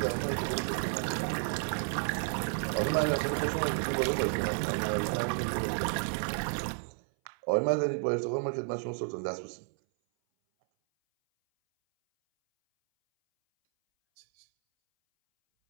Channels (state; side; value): silent; left; 57 dB below the other